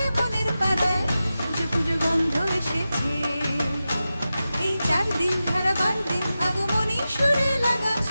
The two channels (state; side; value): inverted; both; correlation -0.93